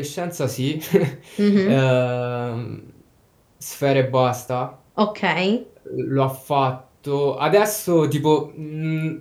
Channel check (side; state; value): both; identical; correlation 1.00